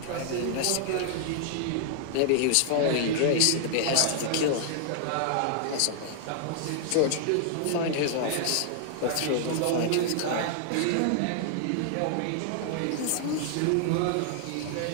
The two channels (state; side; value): different; both; correlation 0.00